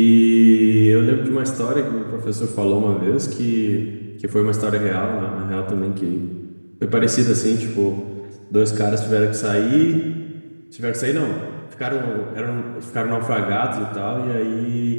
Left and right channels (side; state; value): both; inverted; correlation -1.00